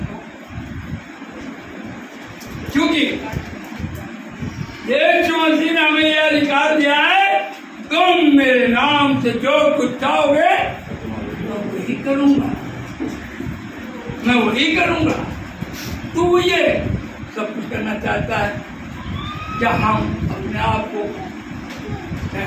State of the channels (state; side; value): identical; both; correlation 1.00